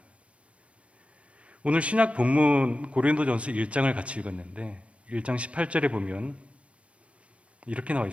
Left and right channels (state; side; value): late; left; 0.062 ms